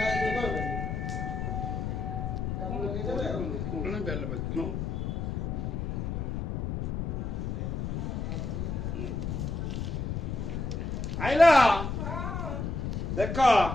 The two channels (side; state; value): left; noise; rumble, 2 dB below the sound